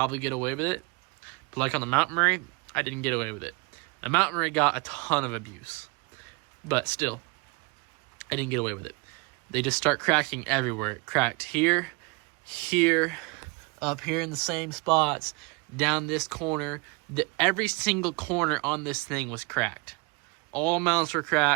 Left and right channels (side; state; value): left; quieter; 28.7 dB